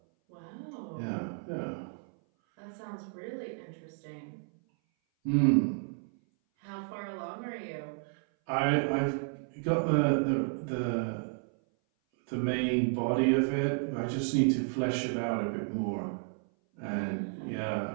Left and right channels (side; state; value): left; silent; 56 dB below the other